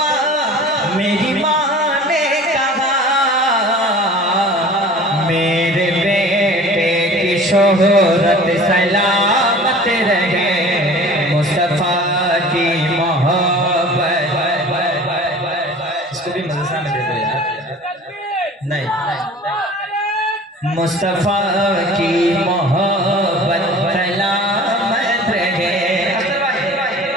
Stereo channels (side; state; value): both; normal; correlation 0.43